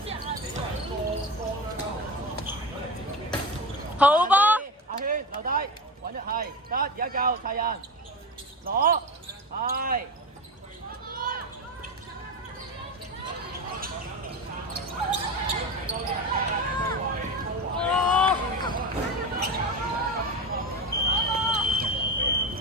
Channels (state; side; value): normal; both; correlation 0.24